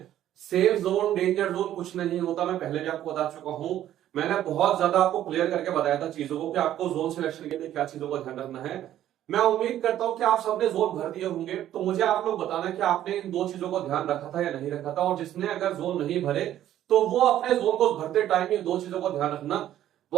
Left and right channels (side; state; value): left; quieter; 12.1 dB